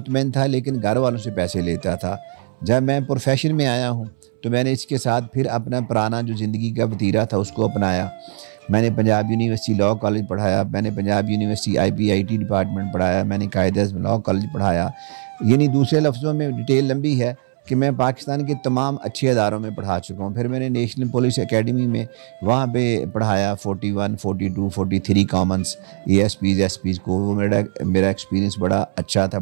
था, लेकिन घर वालों से पैसे लेता था। जब मैं प्रोफेशन में आया हूँ तो मैंने इसके साथ फिर अपना पुराना जो ज़िंदगी का वतीरा था उसको अपनाया। मैंने पंजाब यूनिवर्सिटी लॉ कॉलेज पढ़ाया, मैंने पंजाब यूनिवर्सिटी IPIT डिपार्टमेंट पढ़ाया, मैंने कायदे लॉ कॉलेज पढ़ाया। यानी दूसरे लफ्ज़ों में डिटेल लंबी है कि मैं पाकिस्तान के तमाम अच्छे अदारों में पढ़ा चुका हूँ। फिर मैंने नेशनल पुलिस एकेडमी में वहाँ पे पढ़ाया 41, 42, 43 कॉमन्स ASPs SPs को। वो मेरा एक्सपीरियंस बड़ा अच्छा था,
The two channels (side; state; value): left; silent; 66 dB below the other